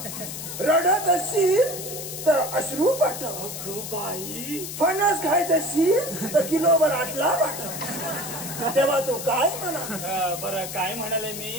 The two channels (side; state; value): left; noise; hiss, 8 dB below the sound